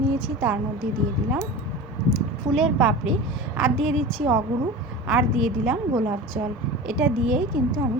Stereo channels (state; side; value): normal; both; correlation 0.33